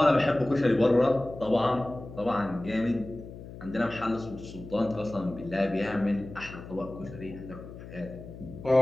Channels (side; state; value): left; noise; hum, 14 dB below the sound